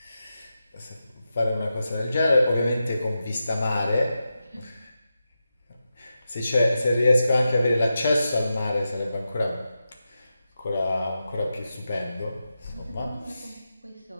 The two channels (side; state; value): both; inverted; correlation -0.90